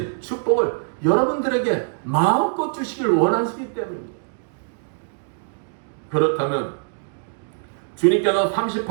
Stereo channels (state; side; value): silent; left; digital silence